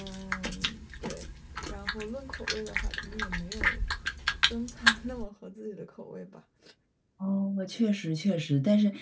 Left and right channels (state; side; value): identical; both; correlation 1.00